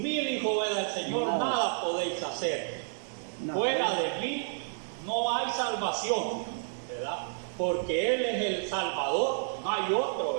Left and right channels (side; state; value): left; silent; digital silence